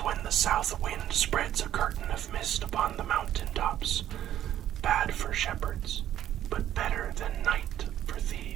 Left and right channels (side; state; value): left; quieter; 11.7 dB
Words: the south wind spreads a curtain of mist upon the mountain tops, bad for shepherds, but better than night for